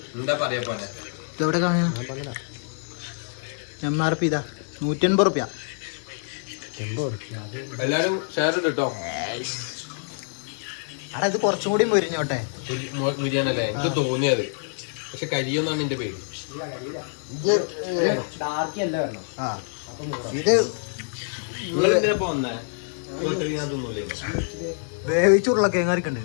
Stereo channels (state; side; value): silent; right; digital silence